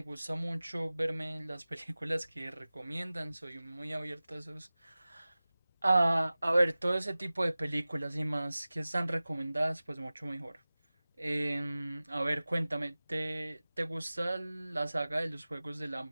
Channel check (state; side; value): inverted; both; correlation -0.98